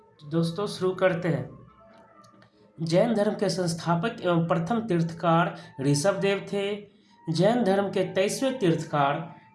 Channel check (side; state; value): both; identical; correlation 1.00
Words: तो दोस्तों शुरू करते हैं। जैन धर्म के संस्थापक एवं प्रथम तीर्थकार ऋषभ देव थे। जैन धर्म के 23वें तीर्थकार